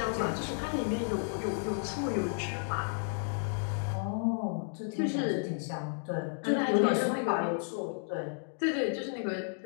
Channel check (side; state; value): right; silent; 56 dB below the other